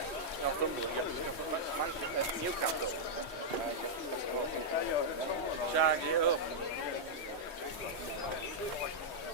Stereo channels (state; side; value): late; right; 3.1 ms